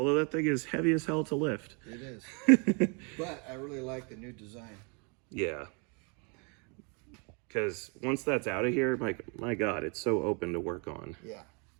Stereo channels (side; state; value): left; quieter; 34.6 dB